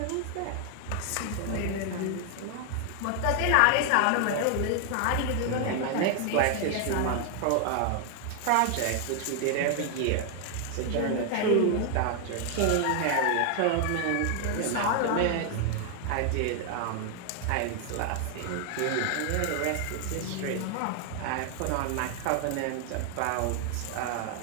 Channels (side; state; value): both; different; correlation 0.00